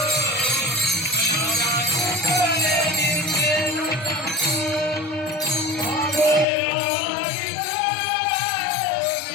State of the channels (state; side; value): drops out; right; at 6.5 s